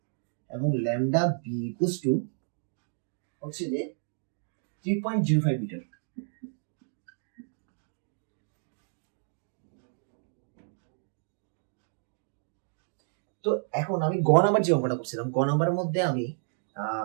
এবং ল্যামডা বি ইকুয়ালস টু হচ্ছে যে 3.05 মিটার। তো এখন আমি নাম্বার যে অঙ্কটা করছিলাম, নাম্বারের মধ্যে আমি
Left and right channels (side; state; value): left; silent; digital silence